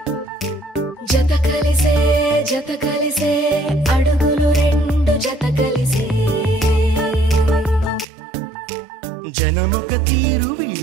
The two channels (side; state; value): left; drops out; at 8.1 s